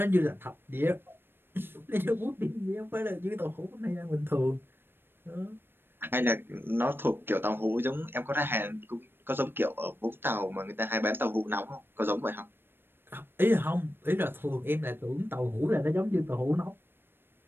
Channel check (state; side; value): late; left; 0.10 ms